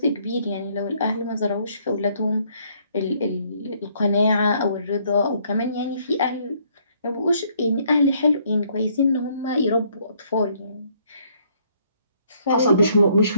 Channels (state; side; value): inverted; both; correlation -0.66